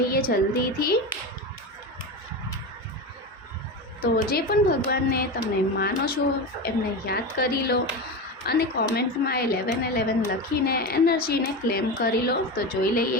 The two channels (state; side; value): normal; both; correlation 0.21